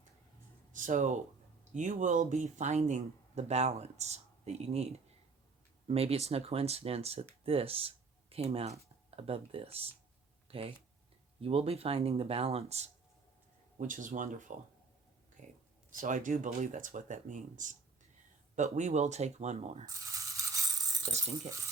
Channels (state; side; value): quieter; left; 4.5 dB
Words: So you will be finding the balance that you need. Maybe it's no coincidence that this came out above this. Okay? You will be finding the balance, which is wonderful. Okay? So I do believe that's what that means. But we will take one more, just in